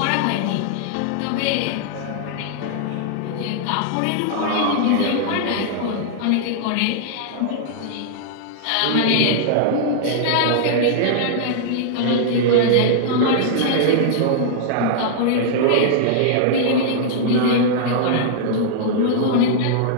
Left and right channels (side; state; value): both; different; correlation -0.01